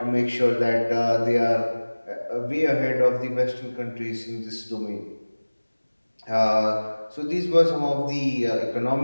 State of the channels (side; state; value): both; inverted; correlation -1.00